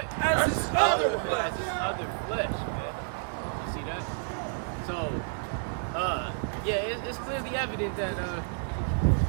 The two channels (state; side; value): silent; left; digital silence